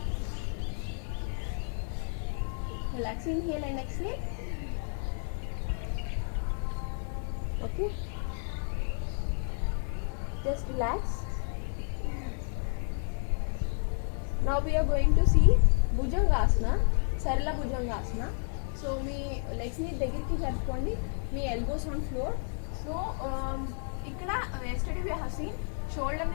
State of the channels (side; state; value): right; silent; 57 dB below the other